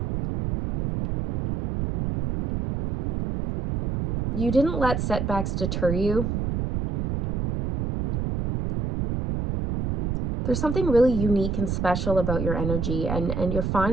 You didn't let setbacks deter you. There's something really unique and special about your energy, and you're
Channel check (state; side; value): noise; right; rumble, 2 dB below the sound